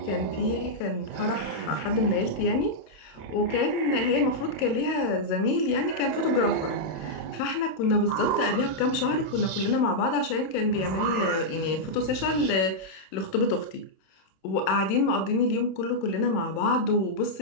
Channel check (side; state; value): right; late; 27 ms